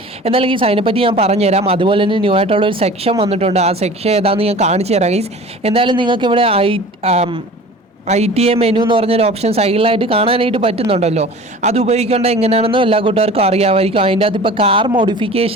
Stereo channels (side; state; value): both; normal; correlation 0.41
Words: എന്നാലും ഗീസ് അതിനെപ്പറ്റി ഞാൻ പറഞ്ഞുതരാം. അതുപോലെ തന്നെ ന്യൂ ആയിട്ടുള്ള ഒരു സെക്ഷൻ വന്നിട്ടുണ്ട്. ആ സെക്ഷൻ ഏതാണെന്ന് ഞാൻ കാണിച്ചു തരാം ഗൈസ്. എന്തായാലും നിങ്ങൾക്ക് ഇവിടെ ITA മെനു എന്ന് പറഞ്ഞൊരു ഓപ്ഷൻ സൈഡിലായിട്ട് കാണാനായിട്ട് പറ്റുന്നുണ്ടല്ലോ. അത് ഉപയോഗിക്കേണ്ട എങ്ങനെയാണെന്നും എല്ലാ കൂട്ടുകാർക്കും അറിയാമായിരിക്കും. അതിൻ്റെ അകത്ത് ഇപ്പോൾ കാർ